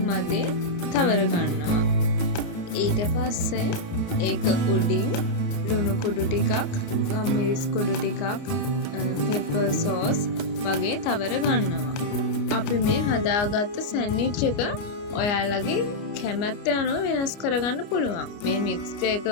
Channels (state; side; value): late; right; 29 ms